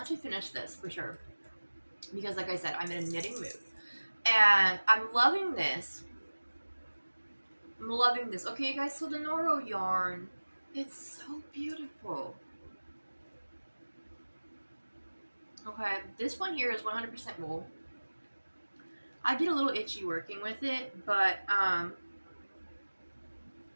to finish this for sure. Because like I said, I'm in a knitting mood. And I'm loving this. I'm loving this. Okay, you guys, so the Noro yarn, it's so beautiful. Okay, this one here is 100% wool. I get a little itchy working with it, but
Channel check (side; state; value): both; inverted; correlation -1.00